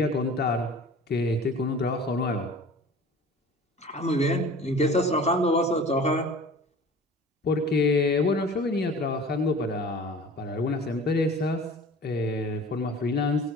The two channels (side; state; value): both; normal; correlation 0.42